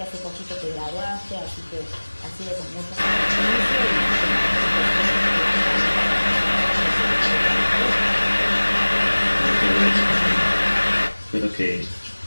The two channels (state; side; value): inverted; both; correlation -1.00